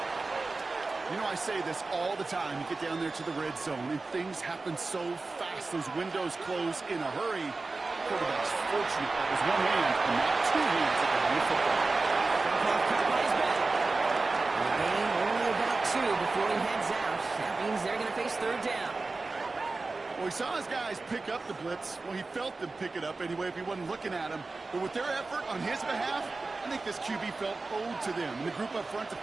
You know, I say this all the time. You get down there to the red zone, and things happen so fast. Those windows close in a hurry. Quarterback's fortunate that was one hand and not two hands at the football. Caught by his back. And the game only about 2 before he heads out. That means they're going to face 3rd down. Well, he saw his guys pick up the blitz. Well, he felt them pick it up anyway if he wasn't looking at him. But with their effort on his behalf, I think this QB felt owed to them. And the group up front to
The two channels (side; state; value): left; quieter; 3.6 dB